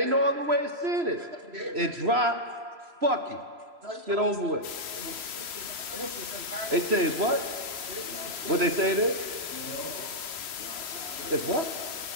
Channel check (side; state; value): left; late; 3.0 ms